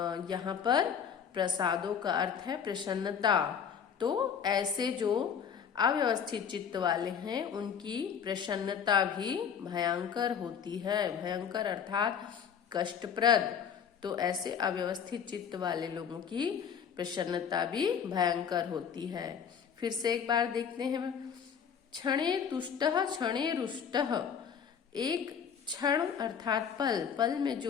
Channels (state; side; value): quieter; right; 7.5 dB